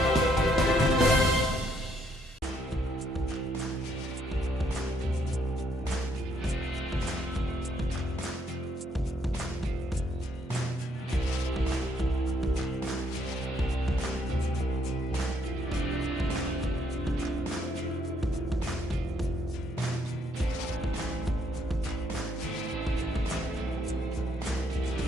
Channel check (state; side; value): normal; both; correlation 0.70